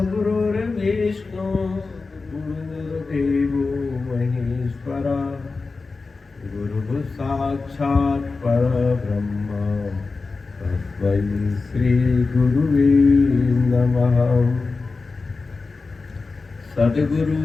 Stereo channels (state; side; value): quieter; right; 4.0 dB